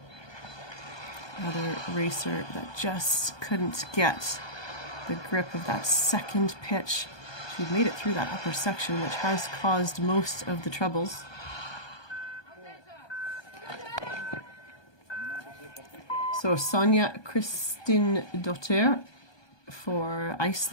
another racer that just couldn't get the grip of that second pitch. She made it through that upper section, which has caused most of the troubles. So Sonja Kristin Dottir for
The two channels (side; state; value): right; late; 1.2 ms